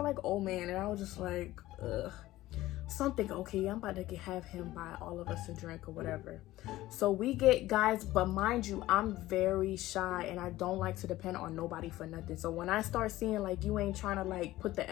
like old man. And I was just like, ugh. Something, okay, I'm about to have him buy all of us a drink or whatever. So we get, guys, but mind you, I'm very shy and I don't like to depend on nobody for nothing. So when I start seeing like you ain't trying to like put the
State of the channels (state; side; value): quieter; right; 16.4 dB